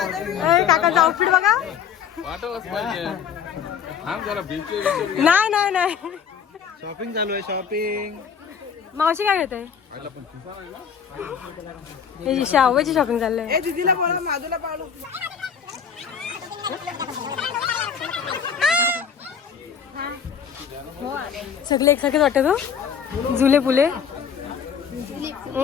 काकाचा आउटफिट बघा. नाही नाही नाही, शॉपिंग चालू आहे. शॉपिंग मावशी काय घेते? शाहूची शॉपिंग चाललंय. दीदीला बोला, माधूला पावलो. सगळे एकसारखेच वाटत हो, झुले फुले.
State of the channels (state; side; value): quieter; right; 7.4 dB